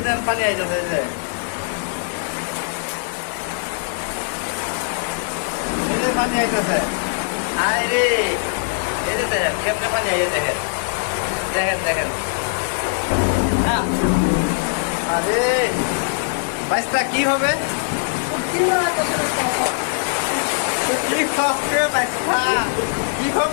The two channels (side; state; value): right; silent; digital silence